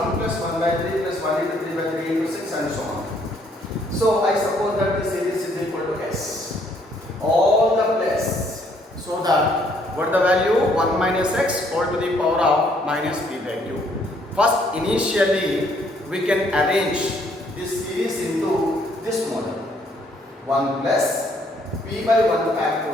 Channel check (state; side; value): normal; both; correlation 0.67